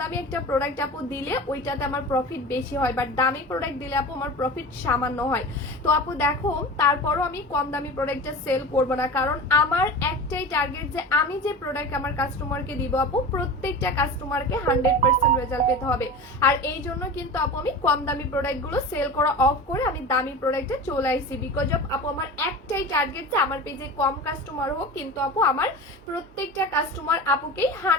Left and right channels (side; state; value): both; normal; correlation 0.32